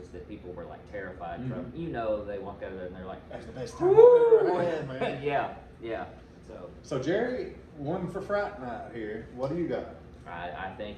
that people were like terrified from, they walk out of there and they're like, That's the best time I've ever had, man. yeah. So Jerry, one for Fright Night here. What do you got? I think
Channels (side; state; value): both; identical; correlation 1.00